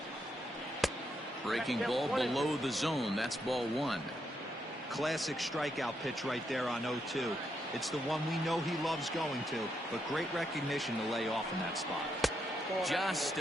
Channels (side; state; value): both; normal; correlation 0.80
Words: Breaking ball below the zone. That's ball 1. Classic strikeout pitch right there on 0-2. It's the one we know he loves going to, but great recognition to lay off in that spot. Just